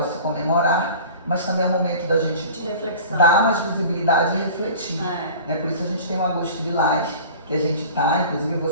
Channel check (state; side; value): inverted; both; correlation -0.41